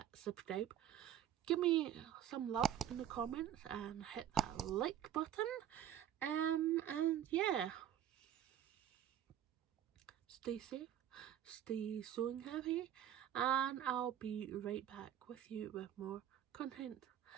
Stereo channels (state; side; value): quieter; left; 10.5 dB